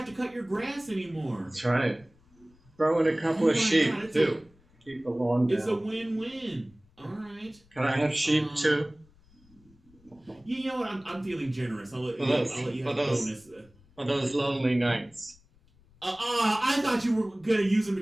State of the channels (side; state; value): left; noise; rumble, 30 dB below the sound